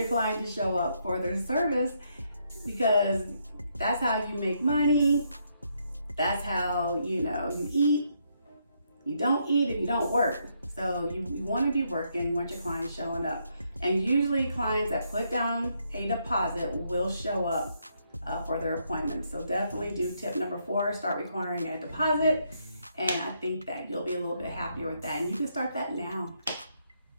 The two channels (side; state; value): both; inverted; correlation -0.75